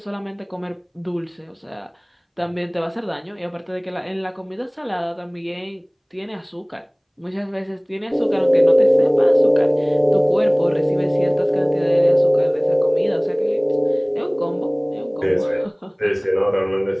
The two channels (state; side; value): identical; both; correlation 1.00